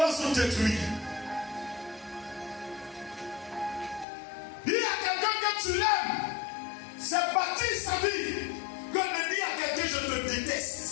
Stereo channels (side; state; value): right; drops out; at 4.0 s